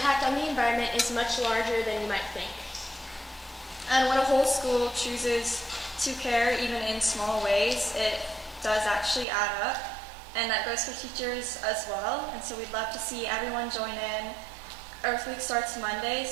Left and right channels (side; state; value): left; drops out; at 9.2 s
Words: on the environment is much larger than you might think. And when a whole school chooses to care, even in small ways, it does actually add up. And that goes for teachers as well. And so we'd love to see everyone join in. Earth Week starts Monday,